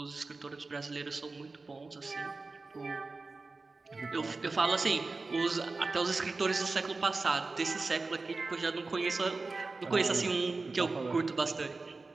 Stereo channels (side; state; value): left; quieter; 3.7 dB